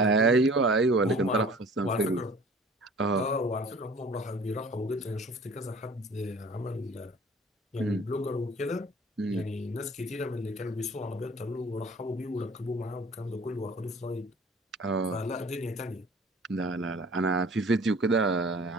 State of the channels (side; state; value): both; normal; correlation 0.48